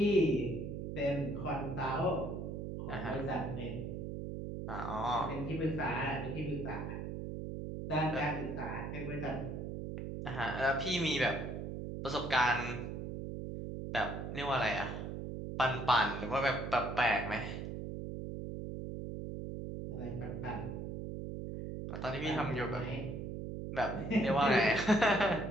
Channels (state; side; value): noise; right; hum, 5 dB below the sound